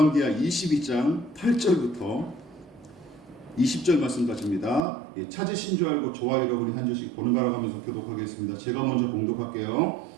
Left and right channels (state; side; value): drops out; left; at 4.9 s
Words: 22장 8절부터 20절 말씀까지입니다. 찾으신 줄 알고 좋아요를 우리 한 절씩 번갈아 가면서 교독하겠습니다. 제가 먼저 봉독할게요.